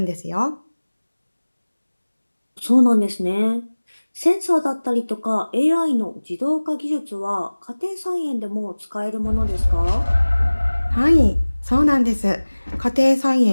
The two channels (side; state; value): both; inverted; correlation -1.00